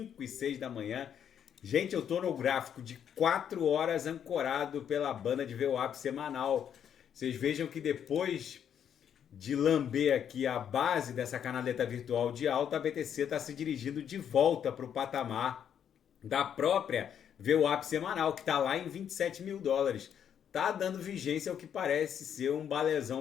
e 6 da manhã. Gente, eu tô no gráfico de 4 horas ancorado pela banda de VWAP semanal. Vocês vejam que depois de lamber aqui a base dessa canaleta virtual de alta, a BTC está se dirigindo de volta para o patamar da própria VWAP semanal, que está lá em 27 mil dólares. Tá dando vigência ao que parece ser um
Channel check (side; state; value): right; quieter; 8.8 dB